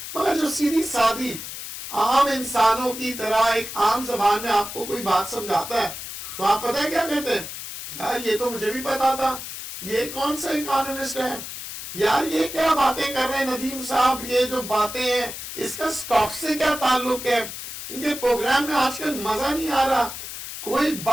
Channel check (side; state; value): left; noise; hiss, 9 dB below the sound